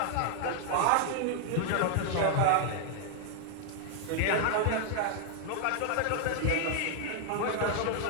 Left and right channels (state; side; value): different; both; correlation 0.00